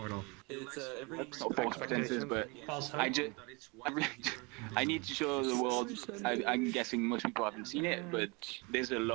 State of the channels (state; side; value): quieter; left; 28.5 dB